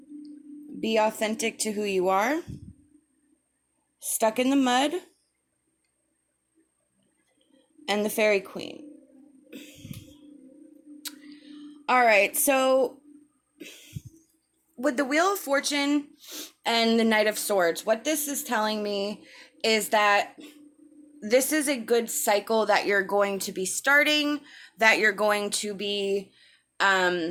Be authentic to who you are, Stuck in the Mud, and the Fairy Queen. All right, so with the Wheel of Fortune and the Knight of Swords, what this is telling me is that this is a good cycle that you're going to be starting, that you're going to be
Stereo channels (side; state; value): both; identical; correlation 1.00